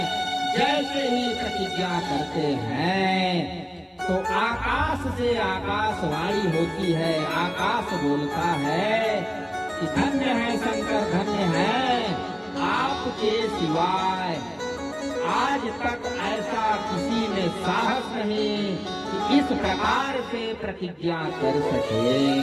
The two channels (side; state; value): both; identical; correlation 1.00